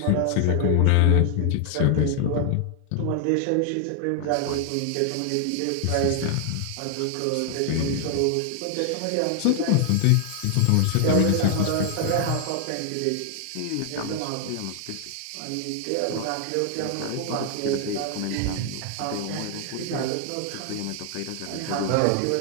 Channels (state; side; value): different; both; correlation 0.00